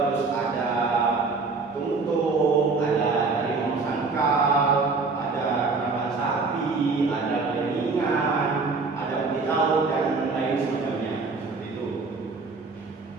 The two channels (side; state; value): left; quieter; 4.2 dB